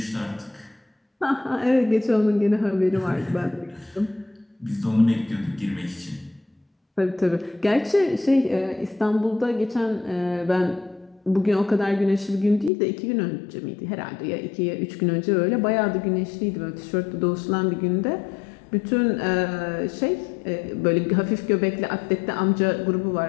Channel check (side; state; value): right; drops out; at 12.7 s